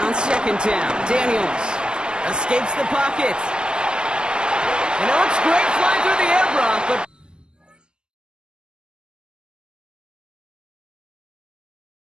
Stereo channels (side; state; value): left; late; 0.051 ms